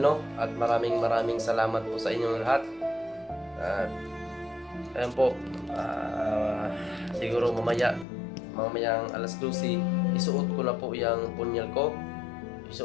At maraming salamat po sa inyong lahat. At ayan po, siguro mamayang alas 12 isuot ko na po yung punyal ko.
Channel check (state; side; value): drops out; right; at 8.1 s